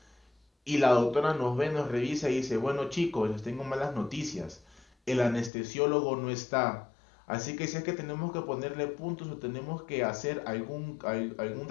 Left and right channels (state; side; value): drops out; right; at 5.5 s